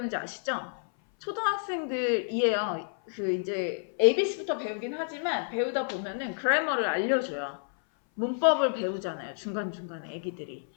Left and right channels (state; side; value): silent; right; 57 dB below the other